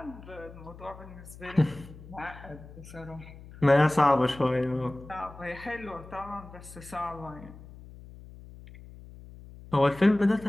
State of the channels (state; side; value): noise; left; hum, 17 dB below the sound